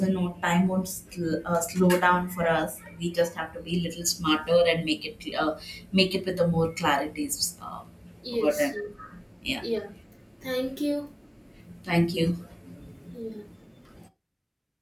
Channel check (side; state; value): both; identical; correlation 1.00